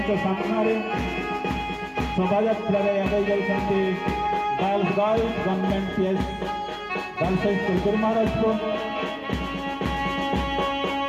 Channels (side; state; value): both; identical; correlation 1.00